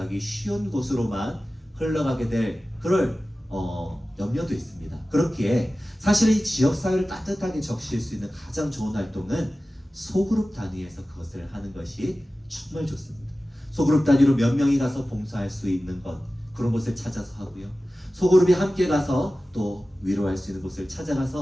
쉬운 곳으로만 흘러가게 될 그럴 염려도 있습니다. 그렇기에 사실 이 지역사회를 따뜻하게 적실 수 있는 가장 좋은 활동은 소그룹 단위에서 그것을 하는 것이 정말 좋습니다. 소그룹 단위로 몇 명이 가서 봉사할 수 있는 것, 그런 곳을 찾아서 하고요. 소그룹이 함께 가서 또 위로할 수 있는 곳을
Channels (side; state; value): both; normal; correlation 0.96